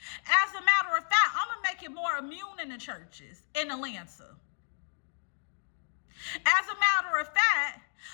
As a matter of fact, I'm going to make it more immune in the churches in Atlanta. As a matter of fact,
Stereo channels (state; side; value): silent; right; 57 dB below the other